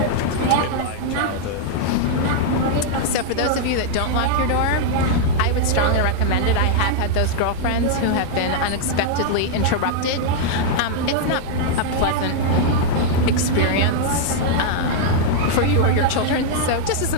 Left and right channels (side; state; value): both; different; correlation -0.01